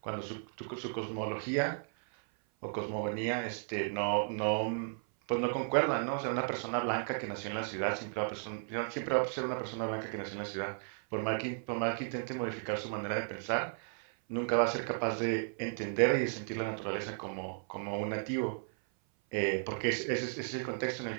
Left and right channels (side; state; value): left; silent; 55 dB below the other